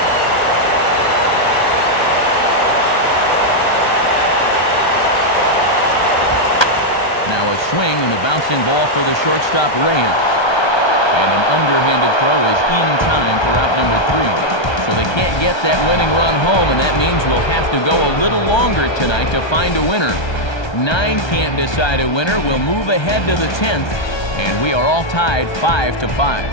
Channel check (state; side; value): late; right; 1.3 ms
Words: Now a swing and a bouncing ball for the shortstop Reyes. And an underhanded throw is in time for out number 3. So they can't get that winning run home, and that means we'll have to go a little longer tonight to find a winner. 9 can't decide a winner. We'll move ahead to the 10th, and we are all tied 5-5.